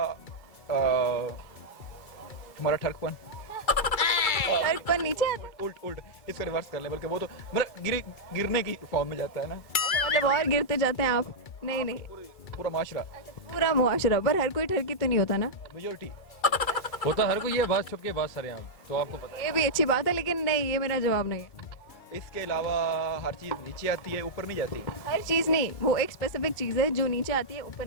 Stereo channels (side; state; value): right; late; 2.3 ms